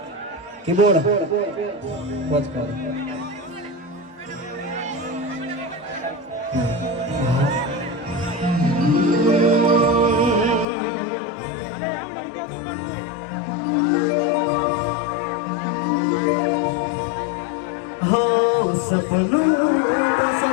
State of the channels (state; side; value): drops out; right; at 10.7 s